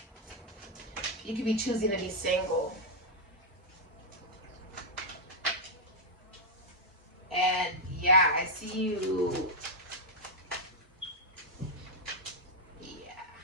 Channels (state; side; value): normal; both; correlation -0.03